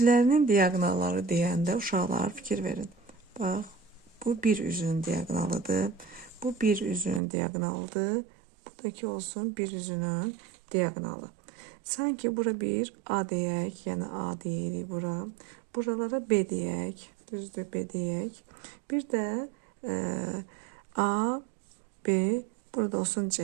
diagonalları deyəndə uşaqlar fikir verin. Bax, bu bir üzünün diagonalıdır. Bu bir üzünün diagonalıdır. Buradakı olsun bir üzünün diagonalı. Sanki bura bir A deyək, yəni A deyirik bura. Buralara B deyək, düzdür B deyək. Bir də A, B, burada olsun C,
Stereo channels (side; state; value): left; drops out; at 7.2 s